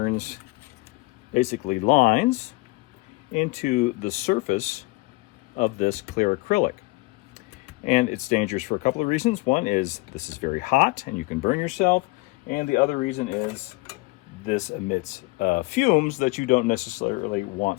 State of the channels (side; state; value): right; quieter; 23.8 dB